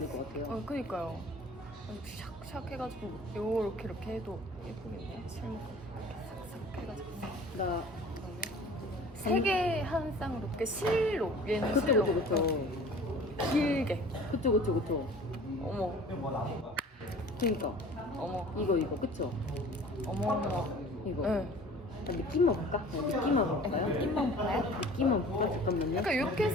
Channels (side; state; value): both; normal; correlation 0.45